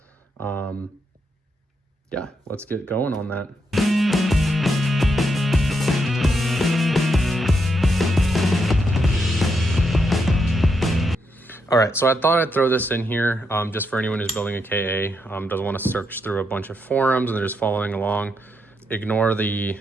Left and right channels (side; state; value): both; normal; correlation 0.80